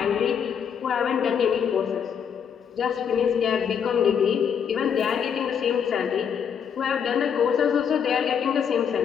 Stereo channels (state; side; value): quieter; right; 7.6 dB